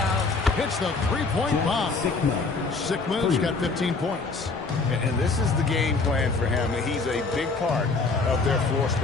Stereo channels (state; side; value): quieter; right; 4.0 dB